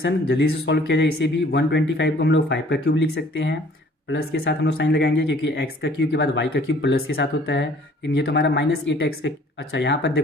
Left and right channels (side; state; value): both; normal; correlation 0.55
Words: जल्दी से सॉल्व किया जाए। इसे भी 125 को हम लोग 5 का क्यूब लिख सकते हैं, प्लस के साथ हम लोग साइन लगाएंगे, क्योंकि x का क्यूब के बाद y का क्यूब प्लस के साथ होता है, लेकिन ये तो हमारा -8x का। अच्छा, यहाँ पर